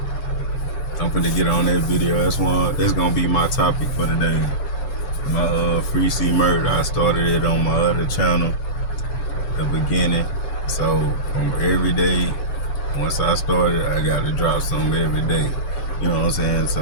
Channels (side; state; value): right; late; 7.0 ms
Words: I'm finna get on that video. That's gonna be my topic for today. My free C murder. I started it on my other channel, the beginning. So from every day, once I started, I gotta drop something every day. You know what I'm saying?